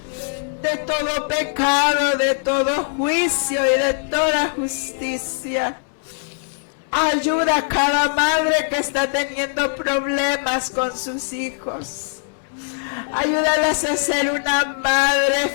de todo pecado, de todo juicio y de toda justicia. Ayuda a cada madre que está teniendo problemas con sus hijos. Ayúdalas a ser una madre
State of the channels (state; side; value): silent; right; digital silence